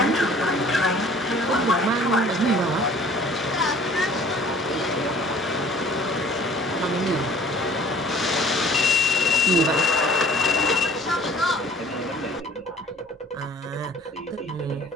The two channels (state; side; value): normal; both; correlation 0.51